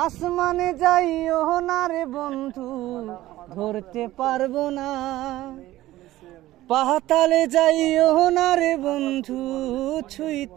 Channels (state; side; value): quieter; left; 15.9 dB